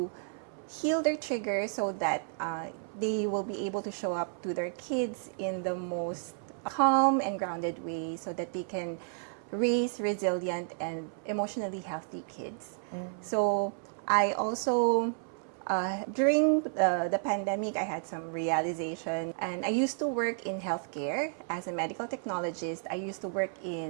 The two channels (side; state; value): left; silent; 56 dB below the other